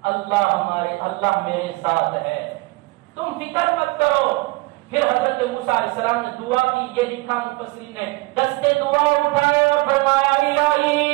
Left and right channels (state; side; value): quieter; left; 23.5 dB